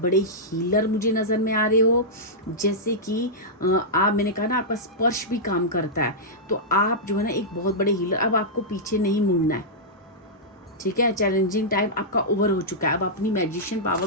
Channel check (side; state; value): both; normal; correlation -0.11